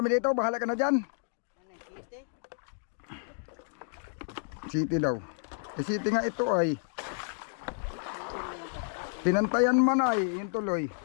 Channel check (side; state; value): right; silent; digital silence